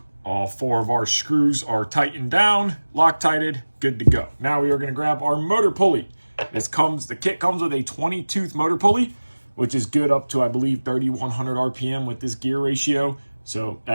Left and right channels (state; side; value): inverted; both; correlation -1.00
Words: All four of our screws are tightened down, Loctited, good to go. Now we are going to grab our motor pulley. The kit comes with a 20-tooth motor pulley, which is good up to, I believe, 3,100 RPM with this gear ratio. So